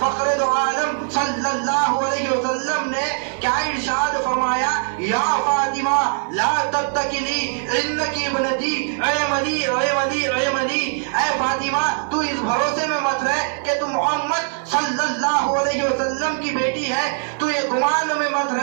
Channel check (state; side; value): silent; left; 64 dB below the other